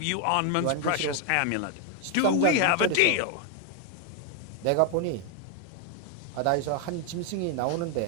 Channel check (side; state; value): both; different; correlation 0.01